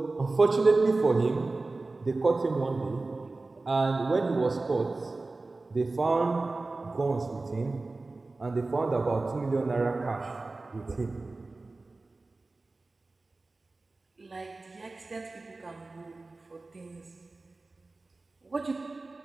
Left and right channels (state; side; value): quieter; left; 3.4 dB